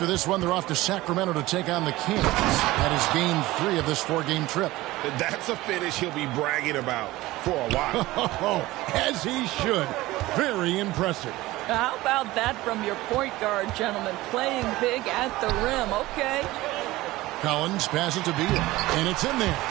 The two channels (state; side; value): quieter; left; 18.3 dB